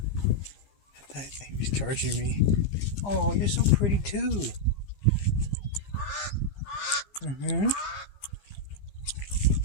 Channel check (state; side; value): late; right; 15 ms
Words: I thought he was charging me. Oh, you're so pretty too. Mm-hmm.